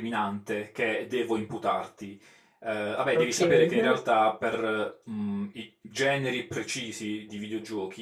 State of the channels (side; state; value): both; identical; correlation 1.00